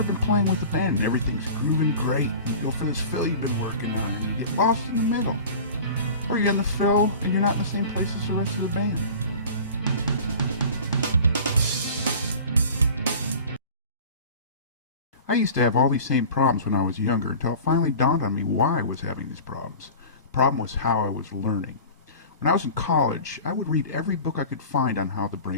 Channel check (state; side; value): inverted; both; correlation -0.39